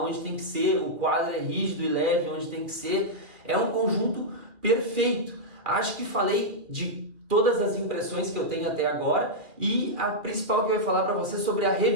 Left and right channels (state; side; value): late; left; 2.3 ms